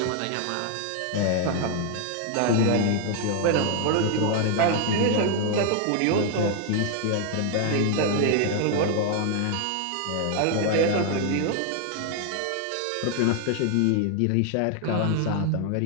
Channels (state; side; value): different; both; correlation 0.00